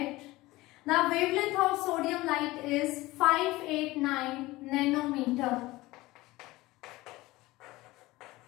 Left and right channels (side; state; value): right; quieter; 19.4 dB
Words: The wavelength of sodium light is 589 nanometer.